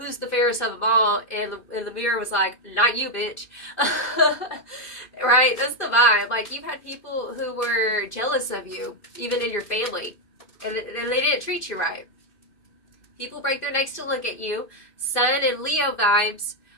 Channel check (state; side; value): late; right; 2.5 ms